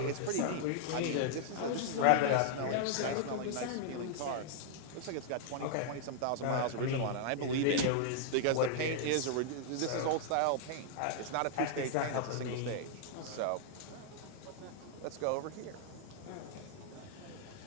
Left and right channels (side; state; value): both; different; correlation -0.01